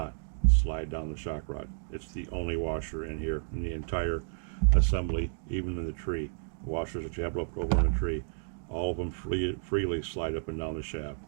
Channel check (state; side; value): silent; left; digital silence